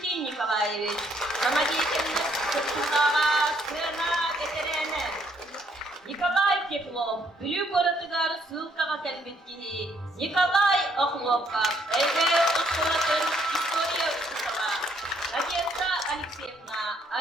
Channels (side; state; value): both; normal; correlation 0.68